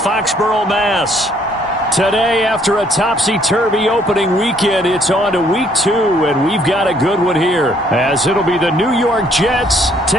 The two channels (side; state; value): both; normal; correlation 0.65